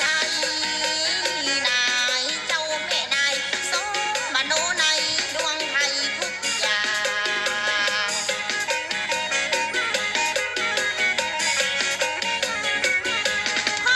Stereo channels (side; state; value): both; identical; correlation 1.00